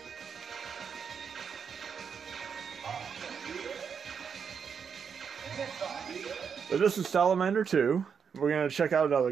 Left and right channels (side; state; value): left; quieter; 6.7 dB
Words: But this is Salamander 2. We're going to check out another